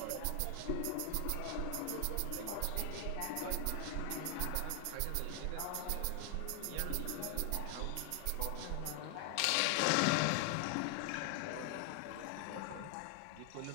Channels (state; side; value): different; both; correlation 0.00